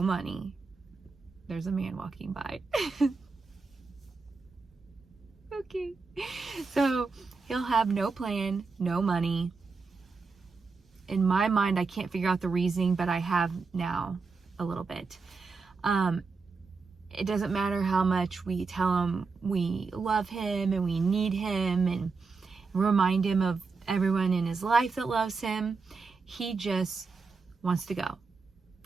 money. There's a man walking by. Okay. So he'll have no plan, no money. In my mind, I can't figure out the reasoning, but I have now a little bit. It doesn't matter how much we tell him we love him and we need him and remind him of everyone in his life that loves him. He just wants to go,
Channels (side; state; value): left; quieter; 4.5 dB